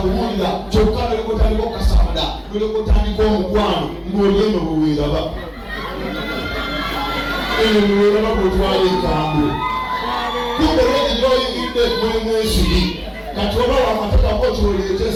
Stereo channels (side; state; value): both; identical; correlation 1.00